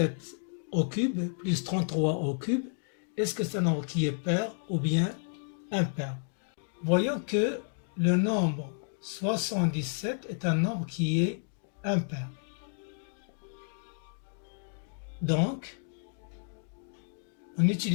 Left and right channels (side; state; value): right; silent; digital silence